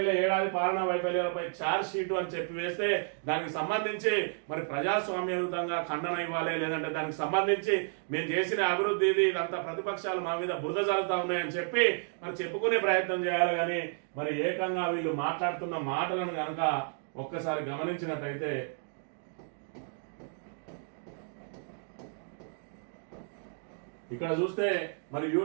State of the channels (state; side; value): silent; left; 57 dB below the other